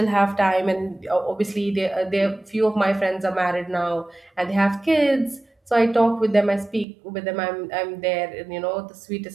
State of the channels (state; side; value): drops out; left; at 6.9 s